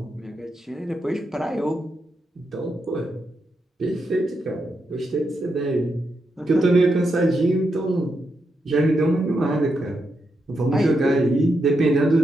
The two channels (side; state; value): both; normal; correlation 0.83